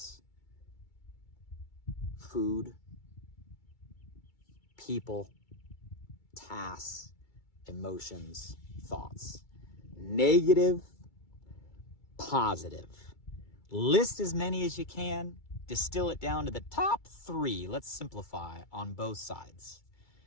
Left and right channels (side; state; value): right; late; 2.3 ms